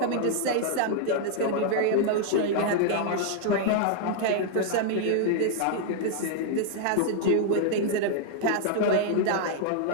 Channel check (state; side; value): different; both; correlation -0.01